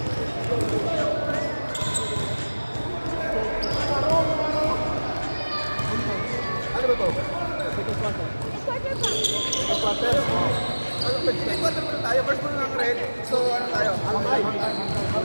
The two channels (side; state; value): both; inverted; correlation -1.00